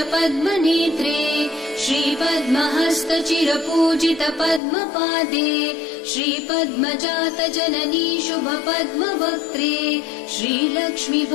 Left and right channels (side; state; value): right; drops out; at 4.6 s